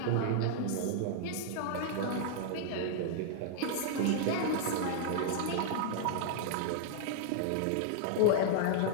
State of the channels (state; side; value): different; both; correlation -0.01